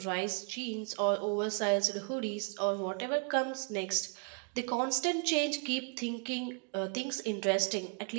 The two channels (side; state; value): left; quieter; 39.0 dB